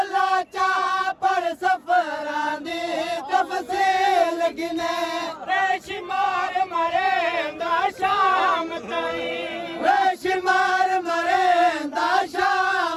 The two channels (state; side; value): identical; both; correlation 1.00